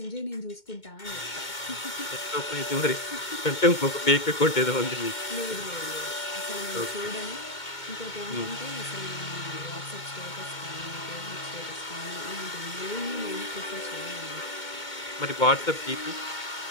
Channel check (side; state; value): right; late; 2.2 ms